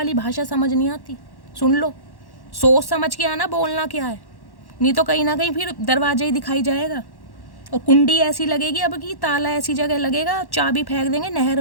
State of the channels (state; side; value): late; right; 1.1 ms